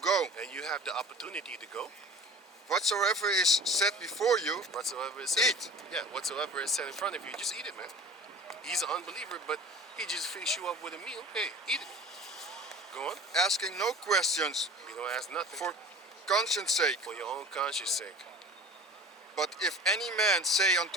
And you have the opportunity to go. whatsoever is set before you, Whatsoever is said, eat. yeah, whatsoever is set in front of you, just eat it, man. He's an unbeliever, but he just feeds you up with a meal. Hey, eat it. Go on. asking no questions You don't ask nothing for conscience sake. for your own conscience sake. But if any man say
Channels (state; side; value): normal; both; correlation 0.40